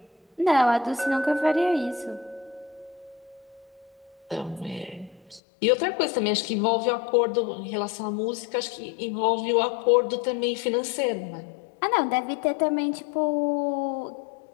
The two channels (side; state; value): right; drops out; at 5.4 s